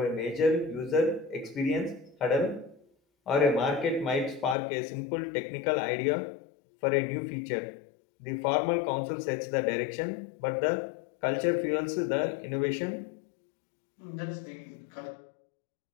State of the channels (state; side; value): drops out; right; at 4.5 s